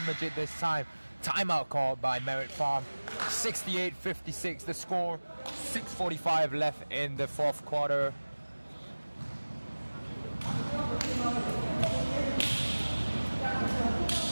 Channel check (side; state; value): both; inverted; correlation -1.00